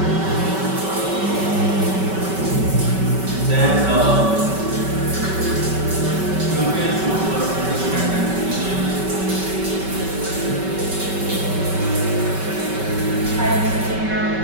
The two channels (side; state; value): left; late; 5.2 ms